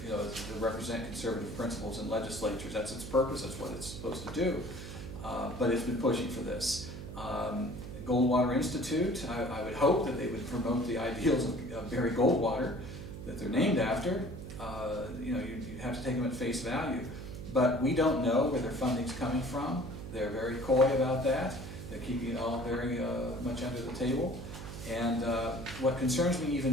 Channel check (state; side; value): noise; right; hum, 9 dB below the sound